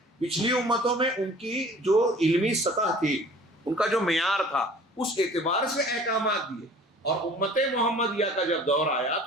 پچھلی امتوں میں ان کی جو علمی سطح تھی، ان کا جو معیار تھا، اس اعتبار سے احکامات دیے. اور امت محمدیہ کا جب دور آیا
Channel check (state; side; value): normal; both; correlation 0.48